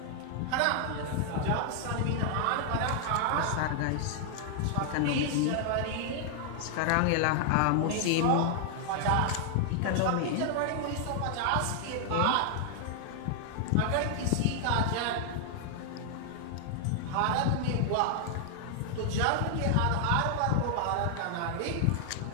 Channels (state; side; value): different; both; correlation 0.00